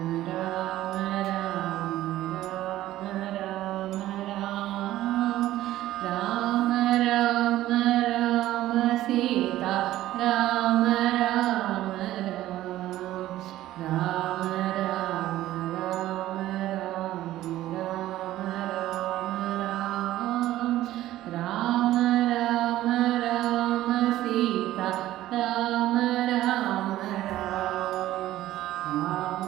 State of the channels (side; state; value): left; quieter; 14.6 dB